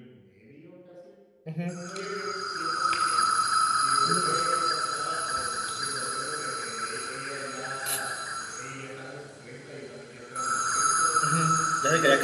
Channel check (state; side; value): identical; both; correlation 1.00